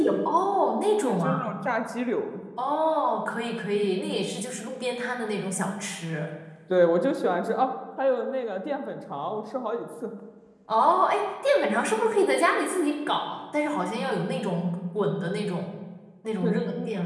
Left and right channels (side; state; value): both; identical; correlation 1.00